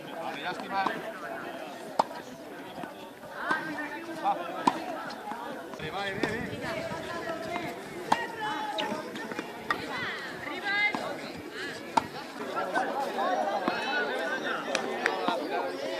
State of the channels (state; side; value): identical; both; correlation 1.00